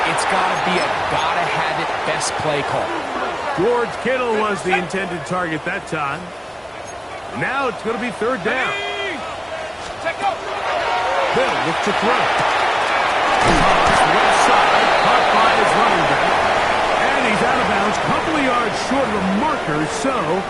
it's got to be a gotta-have-it best play call. George Kittle was the intended target that time. Now it's going to be 3rd down. Bill look to throw. Left side, caught by his running back. And he's out of bounds, couple of yards short of the marker, so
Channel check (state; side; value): identical; both; correlation 1.00